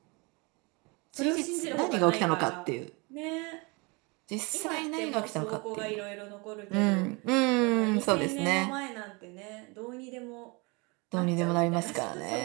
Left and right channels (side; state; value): left; quieter; 28.5 dB